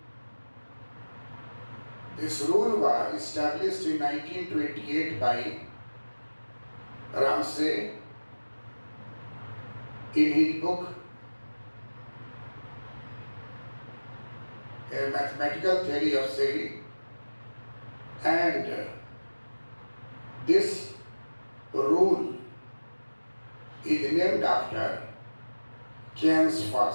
This rule was established in 1928 by Ramsey in his book A Mathematical Theory of Saving, and this rule is named after Keynes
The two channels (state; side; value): inverted; both; correlation -1.00